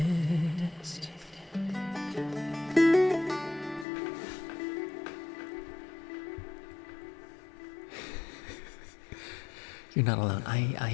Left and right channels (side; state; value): right; drops out; at 3.9 s